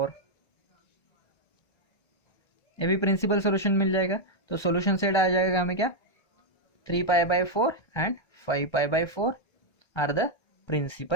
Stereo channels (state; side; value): late; right; 1.3 ms